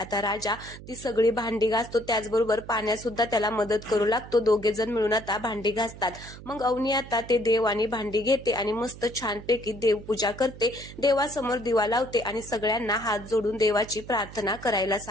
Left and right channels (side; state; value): right; noise; hum, 15 dB below the sound